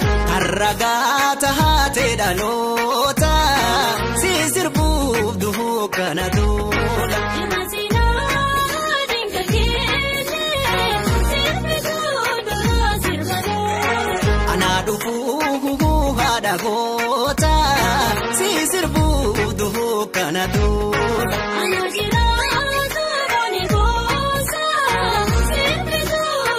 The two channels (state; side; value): identical; both; correlation 1.00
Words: Arragata hate dalota si sirbu duhu kanadu Imasina dingakene sirbitu dura sirbanu Anadufu hada gota si sirbu duhu kanadu Anajira boni gosa sirbitu